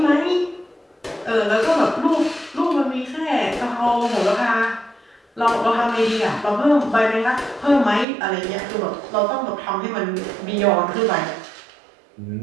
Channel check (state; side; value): drops out; left; at 8.1 s